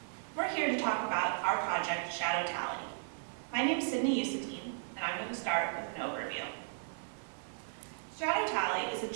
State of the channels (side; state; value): left; silent; digital silence